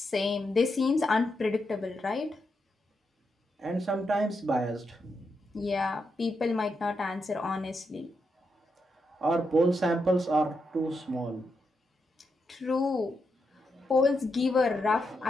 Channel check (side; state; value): both; normal; correlation 0.83